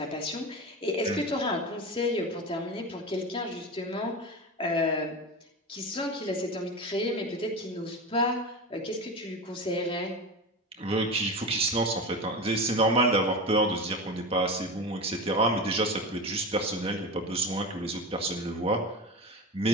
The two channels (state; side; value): normal; both; correlation 0.25